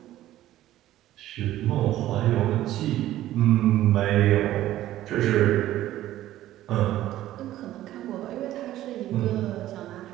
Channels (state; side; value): quieter; left; 14.0 dB